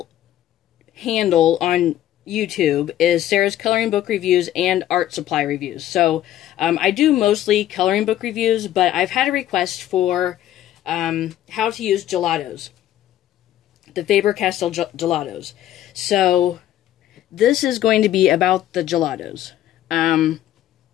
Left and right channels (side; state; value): right; quieter; 12.6 dB